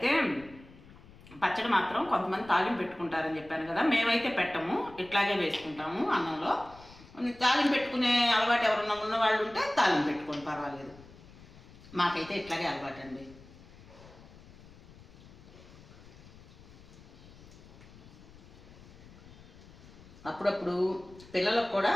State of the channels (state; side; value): noise; left; rumble, 21 dB below the sound